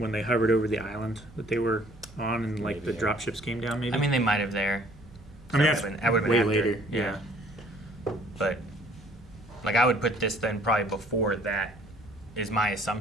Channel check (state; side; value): normal; both; correlation 0.57